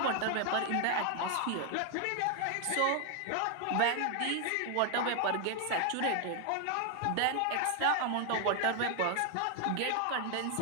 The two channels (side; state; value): both; different; correlation 0.00